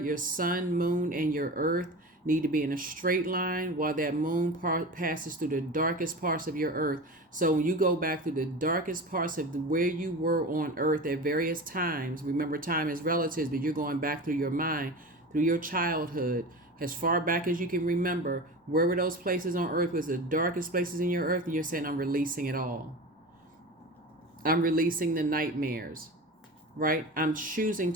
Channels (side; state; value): both; normal; correlation 0.30